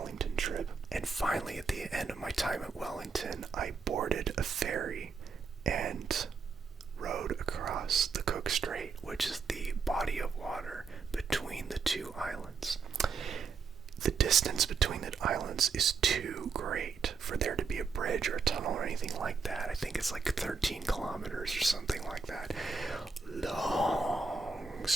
trip. And finally, at the end of my time at Wellington, I boarded a ferry and rode across the Cook Strait, which is the body of water between the two islands. The distance between the islands is too great for there to be a bridge or a tunnel or anything like that. I think it's like 13 kilometers or something like that. Long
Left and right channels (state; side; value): quieter; left; 5.0 dB